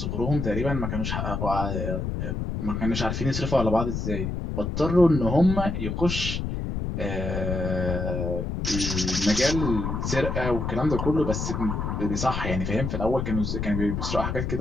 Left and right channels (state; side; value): noise; left; rumble, 2 dB below the sound